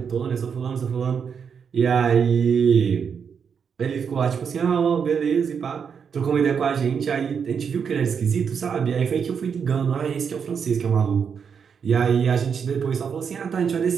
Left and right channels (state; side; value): quieter; left; 6.7 dB